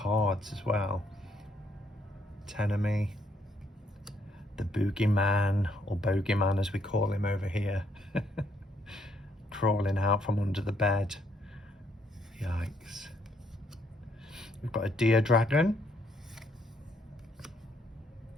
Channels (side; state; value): both; normal; correlation 0.71